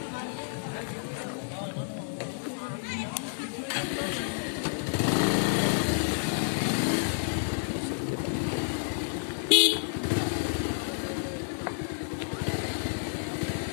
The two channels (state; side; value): silent; right; 58 dB below the other